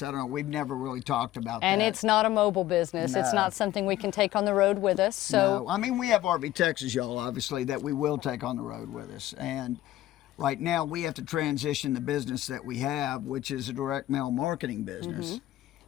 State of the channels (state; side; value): quieter; right; 14.5 dB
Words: I don't know, we've never really talked about And that. it's not a mobile business. It's No. not something we can take on the road with us. So No, I mean, we have RV Texas, y'all, obviously, that we will take on the road with us. And right now, we have to transition the business that we have, which is a direct mail marketing business,